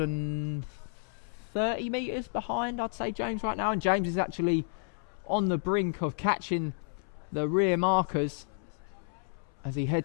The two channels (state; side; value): silent; right; 57 dB below the other